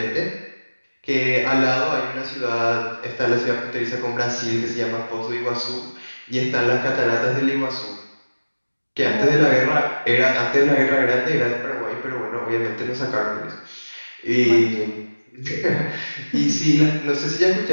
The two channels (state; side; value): inverted; both; correlation -1.00